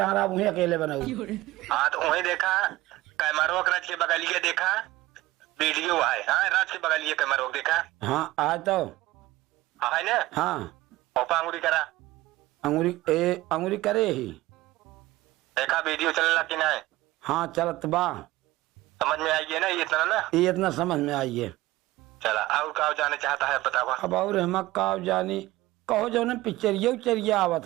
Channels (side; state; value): left; quieter; 17.8 dB